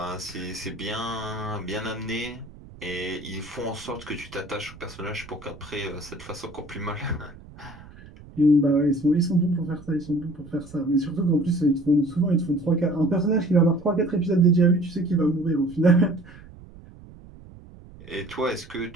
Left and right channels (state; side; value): noise; right; rumble, 19 dB below the sound